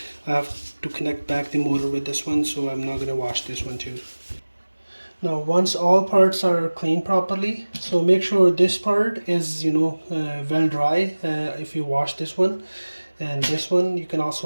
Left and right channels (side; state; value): both; inverted; correlation -1.00